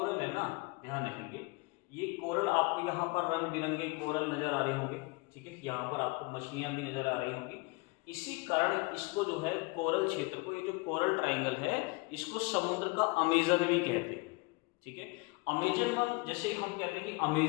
है ना, ध्यान रखेंगे, ये कोरल आपको यहाँ पर रंग बिरंगे कोरल नजर आ रहे होंगे, ठीक है, यहाँ पर आपको मछलियां भी नजर आ रही होंगी। इसी कारण इसको जो है कोरल क्षेत्र को, ये जो कोरल ट्रायंगल है, इसको समुद्र का अमेजन भी कहते हैं, ठीक है। अमेजन वन, जैसे हम कहते हैं कि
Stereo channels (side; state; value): right; quieter; 27.0 dB